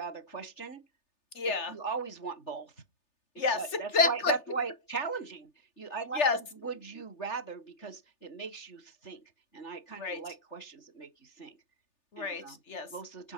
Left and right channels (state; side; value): late; right; 3.3 ms